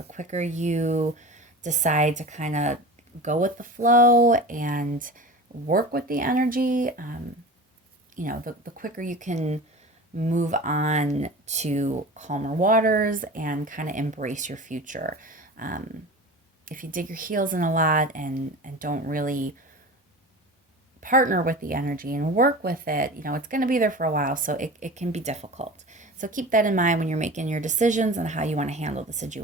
quicker you decide to kind of go with the flow and work with the energy, the quicker you can move on to calmer waters and kind of embrace your future. If you dig your heels in a lot and don't really partner with the energy and work with it, it's going to be there for a while, so it can be difficult. So keep that in mind when you're making your decisions and how you want to handle the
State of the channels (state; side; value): normal; both; correlation 0.34